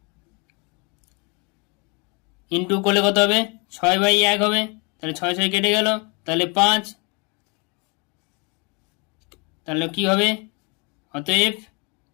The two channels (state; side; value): quieter; right; 31.8 dB